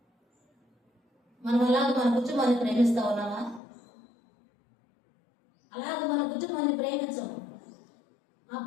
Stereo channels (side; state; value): right; drops out; at 3.6 s